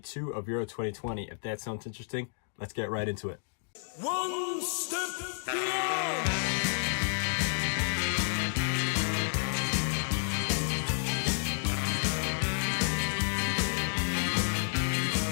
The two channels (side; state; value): right; silent; digital silence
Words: of Euro 2020. If that sounds interesting, let's get right into it. One step beyond.